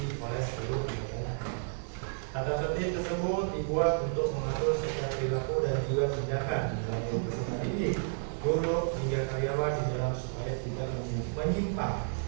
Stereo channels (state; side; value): silent; left; digital silence